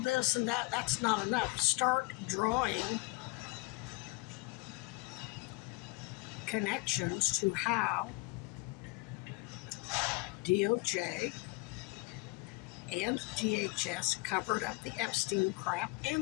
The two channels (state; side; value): quieter; right; 25.2 dB